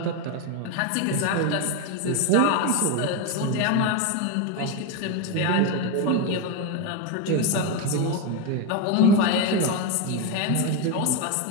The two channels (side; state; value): both; different; correlation 0.03